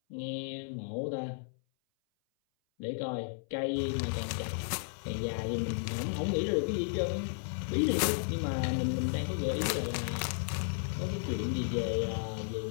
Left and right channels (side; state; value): right; silent; 55 dB below the other